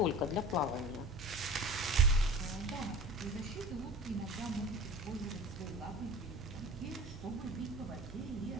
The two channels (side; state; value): both; normal; correlation 0.39